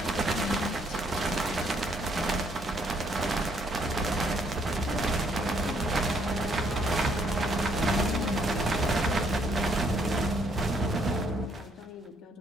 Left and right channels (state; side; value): normal; both; correlation 0.69